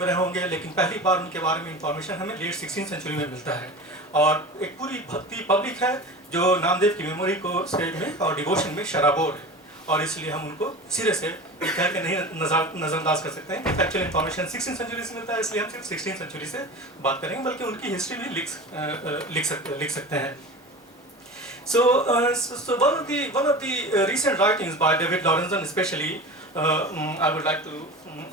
रहे होंगे, लेकिन पहली बार उनके बारे में इंफॉर्मेशन हमें लेट 16 सेंचुरी में मिलता है। और एक पूरी भक्ति पब्लिक है जो नामदेव की मेमोरी को स्टेज में और डिवोशन में शराबोर है, और इसलिए हम उनको सिरे से कह के नहीं नज़रअंदाज कर सकते हैं। फैक्चुअल इन्फॉर्मेशन 16 सेंचुरी से मिलता है, इसलिए हम सिर्फ 16 सेंचुरी से बात करेंगे, बल्कि उनकी हिस्ट्री भी लिख सकते हैं। So one of the recent writings by David Lawrenson, especially, I would like to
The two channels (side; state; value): both; normal; correlation 0.32